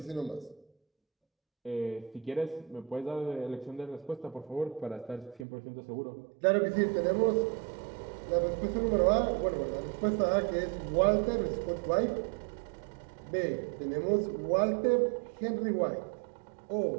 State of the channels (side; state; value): left; drops out; at 5.5 s